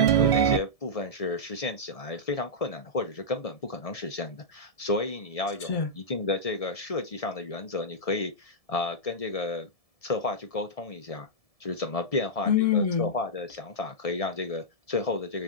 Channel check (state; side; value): late; right; 1.7 ms